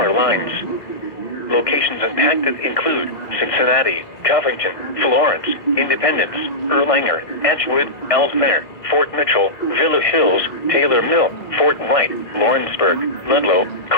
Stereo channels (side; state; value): right; late; 1.6 ms